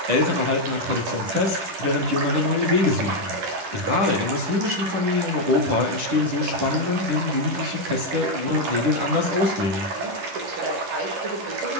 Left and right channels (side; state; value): left; late; 11 ms